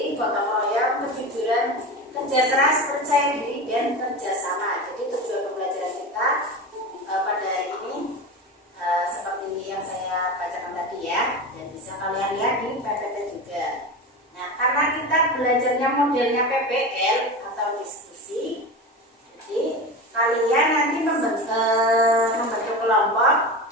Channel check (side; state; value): both; normal; correlation 0.26